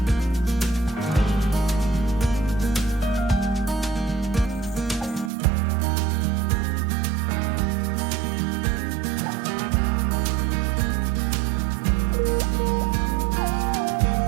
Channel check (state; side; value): drops out; left; at 5.3 s